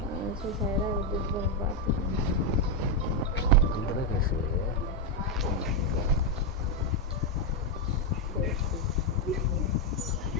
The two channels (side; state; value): both; normal; correlation 0.03